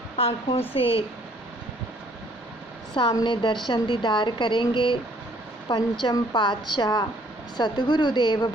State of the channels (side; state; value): both; normal; correlation 0.61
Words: आँखों से सामने दर्शन दीदार करेंगे पंचम पातशाह सतगुरुदेव